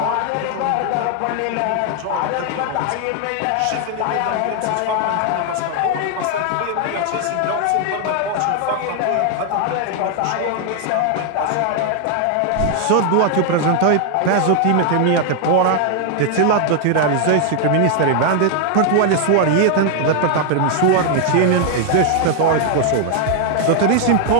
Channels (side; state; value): both; different; correlation 0.00